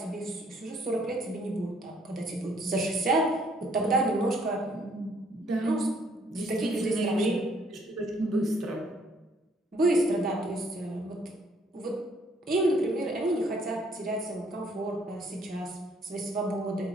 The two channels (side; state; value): both; normal; correlation 0.65